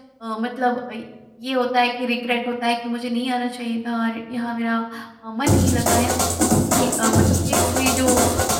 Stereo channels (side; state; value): both; identical; correlation 1.00